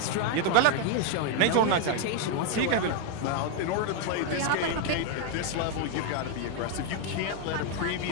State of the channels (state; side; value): different; both; correlation 0.01